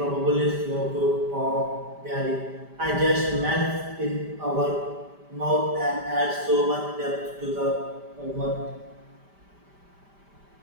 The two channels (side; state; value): left; late; 5.1 ms